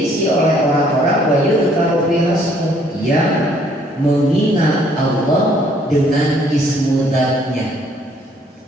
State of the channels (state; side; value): normal; both; correlation 0.63